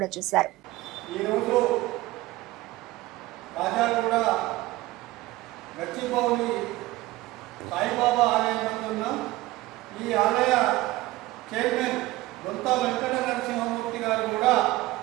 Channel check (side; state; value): left; quieter; 18.2 dB